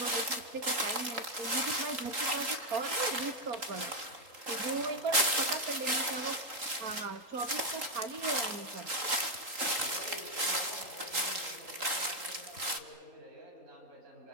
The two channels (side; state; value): left; late; 3.8 ms